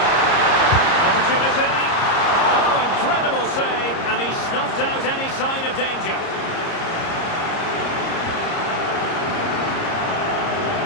Opportunity. Oh, incredible save, and he snuffed out any sign of danger.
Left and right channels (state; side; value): late; right; 30 ms